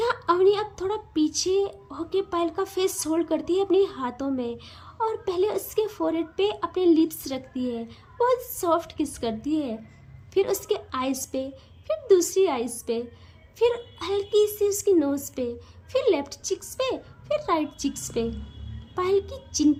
अवनी अब थोड़ा पीछे होके पायल का फेस होल्ड करती है अपने हाथों में, और पहले उसके फोरहेड पे अपने लिप्स रखती है, बहुत सॉफ्ट किस करती है, फिर उसके आइज़ पे, फिर दूसरी आइज़ पे, फिर हल्की सी उसकी नोज़ पे, फिर लेफ्ट चिक्स पे, फिर राइट चिक्स पे, पायल की चिन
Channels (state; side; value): identical; both; correlation 1.00